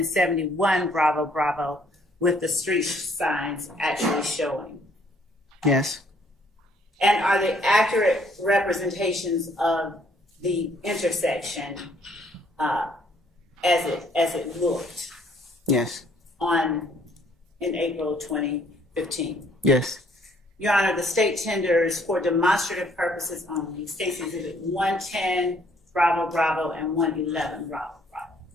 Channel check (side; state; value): both; normal; correlation 0.64